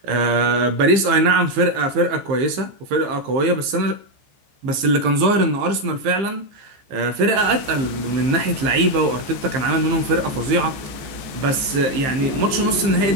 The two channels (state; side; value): late; left; 15 ms